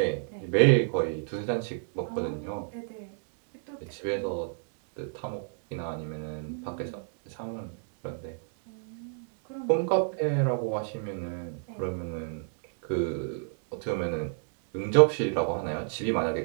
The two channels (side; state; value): left; silent; digital silence